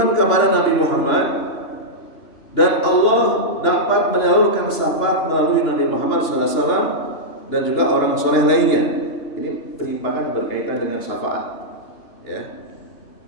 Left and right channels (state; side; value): late; right; 2.8 ms